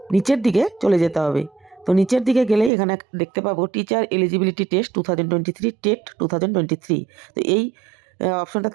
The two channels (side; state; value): left; drops out; at 2.7 s